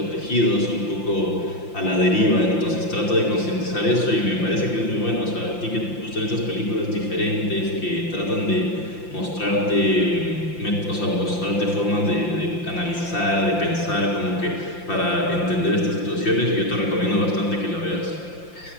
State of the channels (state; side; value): late; right; 5.8 ms